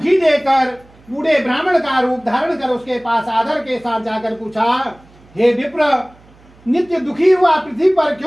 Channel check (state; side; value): noise; right; hum, 28 dB below the sound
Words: देकर बूढ़े ब्राह्मण का रूप धारण कर उसके पास आदर के साथ जाकर पूछा, हे विप्र, नित्य दुखी हुआ पृथ्वी पर